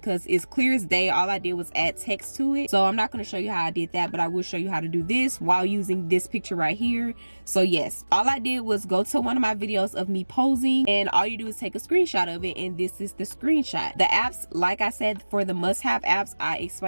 it's clear as day. All I did was add text to it. So I'm not going to show you how I did that, but I will show you how to do this while using this picture right here. So yes, all I did was go to one of my videos of me posing, and all you do is take a screenshot of it, and this is the screenshot. The apps, like I said, for the must-have apps, I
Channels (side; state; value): both; inverted; correlation -1.00